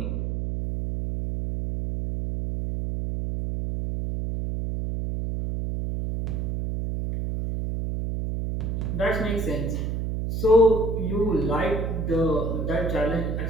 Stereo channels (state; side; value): noise; right; hum, 2 dB below the sound